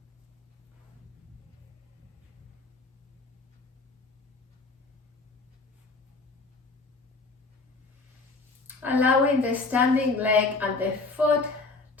Allowing the standing leg and the foot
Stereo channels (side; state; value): right; quieter; 3.7 dB